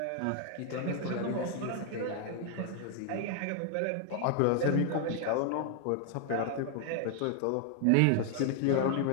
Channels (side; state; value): both; different; correlation 0.00